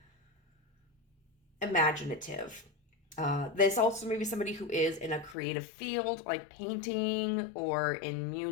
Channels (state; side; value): drops out; right; at 5.4 s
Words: imaginative. This also may be somebody who is in a creative field, like painting or in